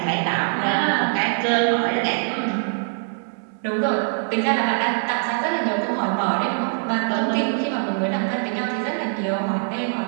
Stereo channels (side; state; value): left; silent; 64 dB below the other